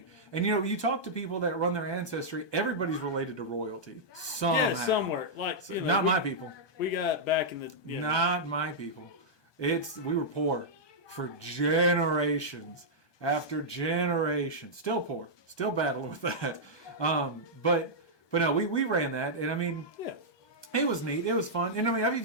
And you know, you talk to people that run their ancestry, everybody's related to royalty. Somehow. Yeah, somewhere. Like, you know, Not my people. We got back in the. You know, Not my people. We were poor for generations after generations. Still poor. Still battling with that. But no, we ran that, and I mean, yeah. it was neat. It was fun, and I mean, I've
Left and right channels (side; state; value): right; late; 1.2 ms